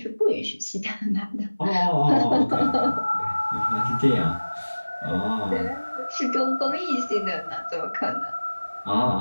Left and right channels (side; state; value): both; inverted; correlation -1.00